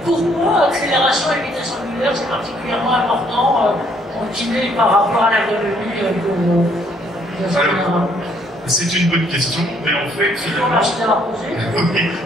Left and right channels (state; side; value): normal; both; correlation 0.66